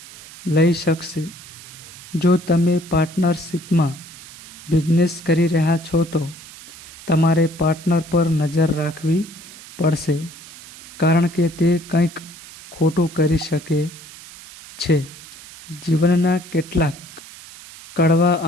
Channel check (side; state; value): right; noise; hiss, 17 dB below the sound